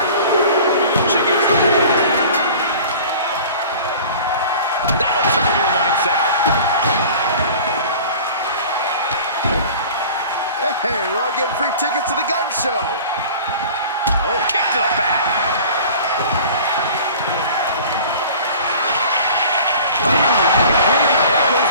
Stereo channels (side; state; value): both; inverted; correlation -0.43